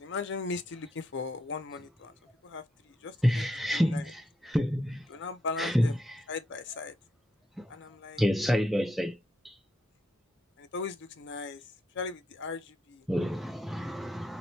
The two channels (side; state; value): both; normal; correlation 0.81